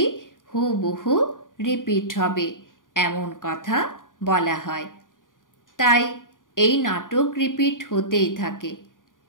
হুবহু রিপিট হবে, এমন কথা বলা হয়। তাই এই নাটক রিপিট হতেই থাকে।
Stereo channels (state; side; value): late; right; 0.89 ms